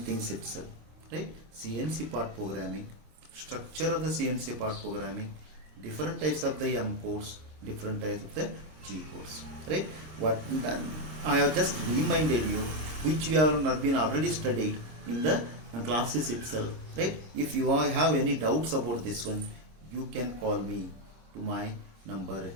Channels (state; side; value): late; left; 26 ms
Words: things itself, right? CNC part programming, structure of the CNC part programming, different types of the M codes, different types of the G codes, right? What I have just reminded you, which you have been already studied in the classes itself, right? If you have any doubts about this one, you can call me to my number